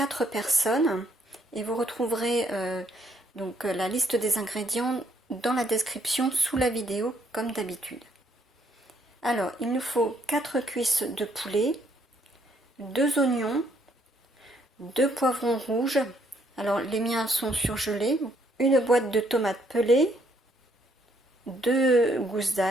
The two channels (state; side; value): normal; both; correlation 0.70